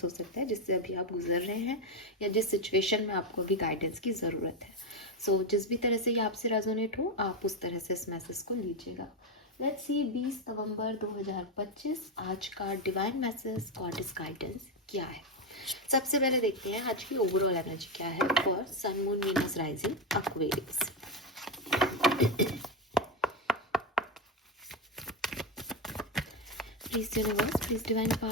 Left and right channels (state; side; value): normal; both; correlation 0.10